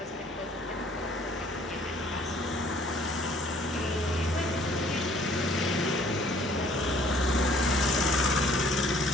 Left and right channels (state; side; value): normal; both; correlation 0.58